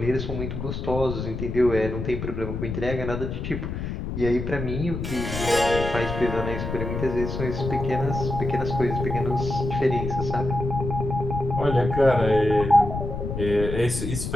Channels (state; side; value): noise; left; rumble, 5 dB below the sound